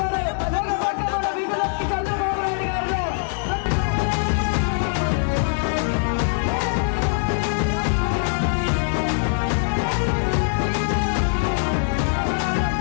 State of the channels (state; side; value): silent; right; 64 dB below the other